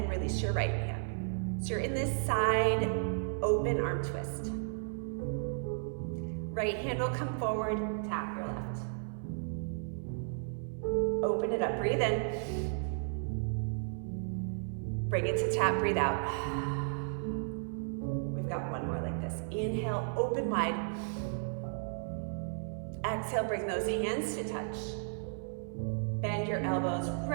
release your right hand. So you're in this side open arm twist. Right hand will come forward, tap your left. Open it up, breathe in. Bring it to tap, breathe out. We've got one more like this. Inhale, open wide. Exhale, bring those hands to touch. Bend your elbows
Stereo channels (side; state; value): left; silent; 55 dB below the other